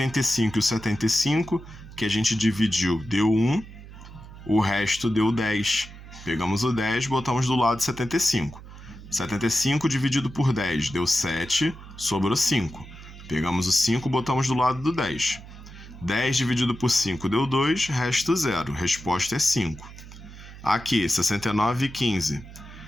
e o 75, que a gente dividiu, deu 1, o resto deu 10. Pegamos o 10, botamos do lado 75. 75 dividido por 10 deu 7, sobrou 5. Pegamos o 5, botamos do lado do 10. 10 dividido por 5 deu 2, resto 0. Resposta é 5. Aqui, 69 e 15.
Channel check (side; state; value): right; noise; hum, 16 dB below the sound